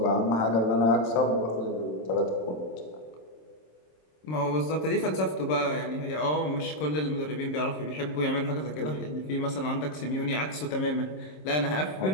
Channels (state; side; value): late; right; 26 ms